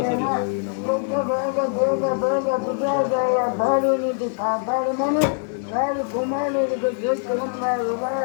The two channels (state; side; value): silent; right; 64 dB below the other